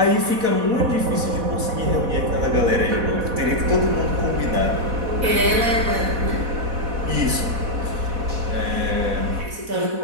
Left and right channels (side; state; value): left; late; 4.1 ms